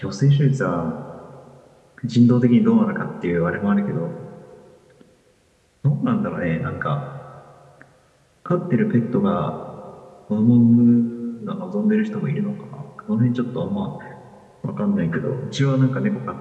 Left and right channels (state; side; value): identical; both; correlation 1.00